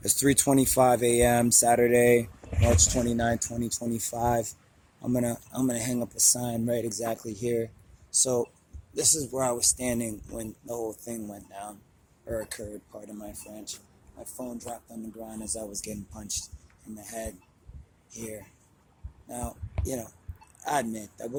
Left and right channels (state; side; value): identical; both; correlation 1.00